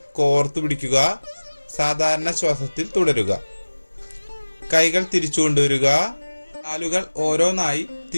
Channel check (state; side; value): inverted; both; correlation -1.00